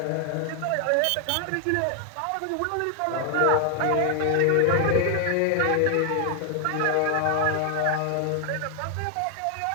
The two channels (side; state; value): both; different; correlation 0.00